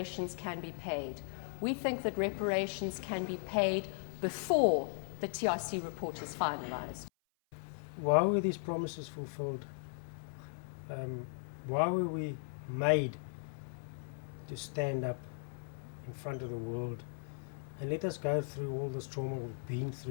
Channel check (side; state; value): right; silent; 53 dB below the other